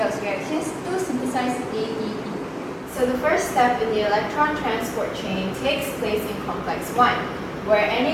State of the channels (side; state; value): both; identical; correlation 1.00